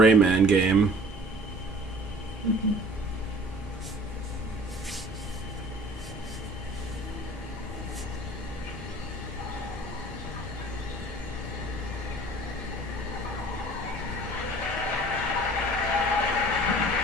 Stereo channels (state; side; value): normal; both; correlation 0.48